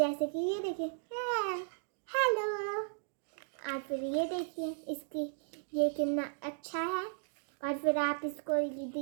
कि ये देखिए हेलो। और फिर ये देखिए इसकी ये कितना अच्छा है। और फिर आप इसको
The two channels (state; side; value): silent; left; digital silence